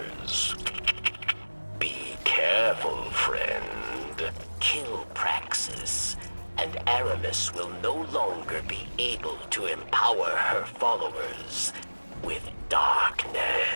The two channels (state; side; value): inverted; both; correlation -1.00